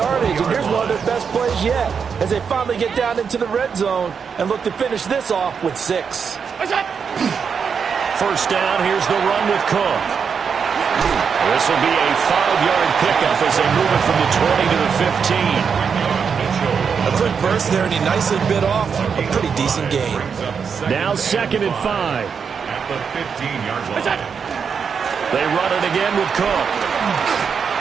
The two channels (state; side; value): quieter; left; 6.4 dB